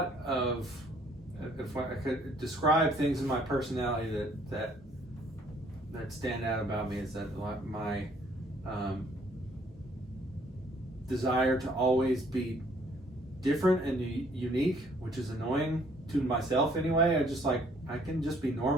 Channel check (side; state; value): both; normal; correlation 0.62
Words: of, if I could describe things in my personality that stand out about me, is that my desire to always be different and unique, which is annoying to myself anyway. I can just be